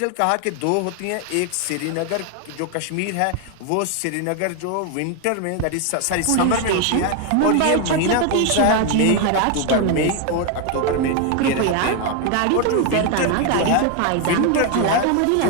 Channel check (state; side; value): different; both; correlation 0.01